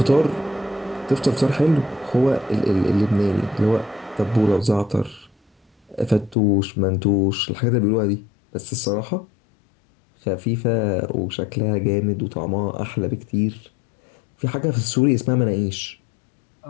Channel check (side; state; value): right; drops out; at 6.4 s